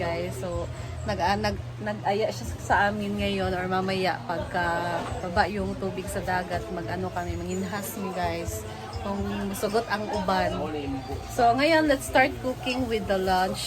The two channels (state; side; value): identical; both; correlation 1.00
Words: So, nag-aya siya sa amin ngayon or mamaya pagka baba yung tubig sa dagat, mag-ano kami, manginhas mi guys. Kung sugot ang uban. So, ngayon, let's start cooking with the